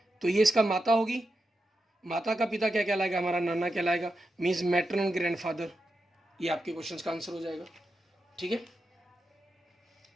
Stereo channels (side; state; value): both; normal; correlation 0.88